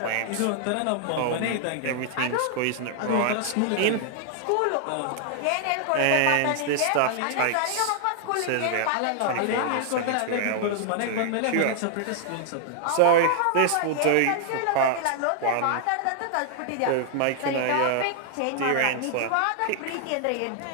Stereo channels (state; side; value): different; both; correlation 0.00